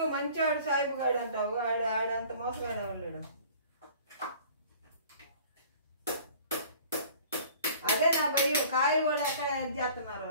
మంచివాడు సాయిబు గాడు అంటావు, ఆడంత మోసగాడు ఎవరు. అదే నా భయం, కాయలు కూడా ఎక్కడ చేస్తున్నారు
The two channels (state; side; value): inverted; both; correlation -0.49